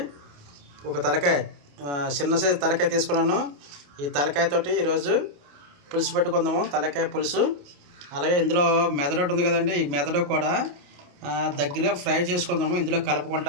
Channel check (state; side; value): late; left; 28 ms